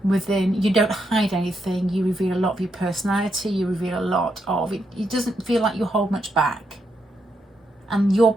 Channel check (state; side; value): normal; both; correlation 0.81